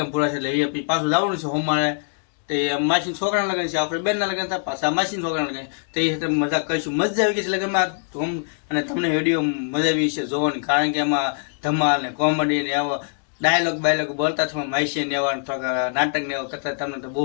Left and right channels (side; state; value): right; silent; 63 dB below the other